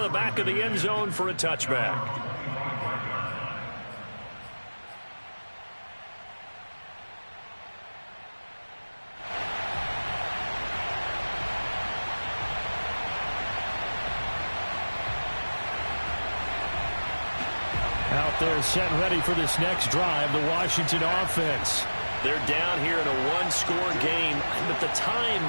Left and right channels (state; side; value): inverted; both; correlation -1.00